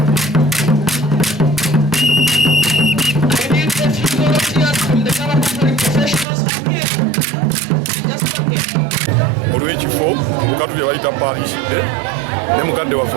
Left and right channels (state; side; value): drops out; left; at 6.2 s